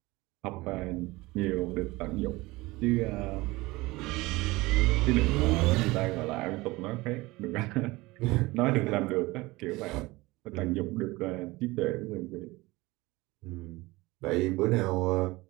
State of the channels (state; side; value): quieter; left; 21.2 dB